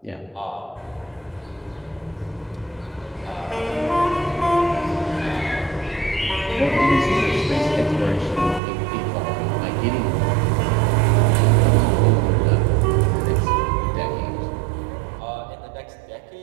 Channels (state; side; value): drops out; left; at 8.6 s